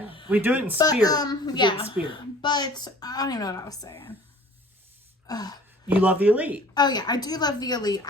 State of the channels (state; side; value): normal; both; correlation 0.48